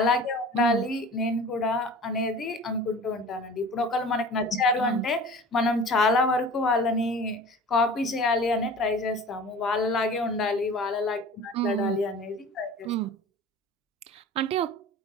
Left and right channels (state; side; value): normal; both; correlation 0.41